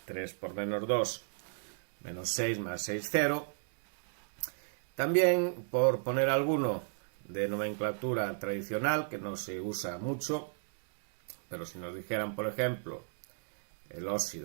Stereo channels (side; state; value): left; silent; digital silence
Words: 3 por menos 2, menos 6 más 6, 0. También, por poner alguno de nomenclatura tradicional, que no se usa mucho, pero si nos dijeran, por ejemplo, el